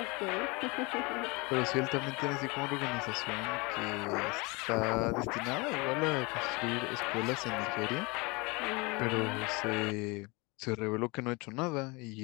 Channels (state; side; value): quieter; right; 26.8 dB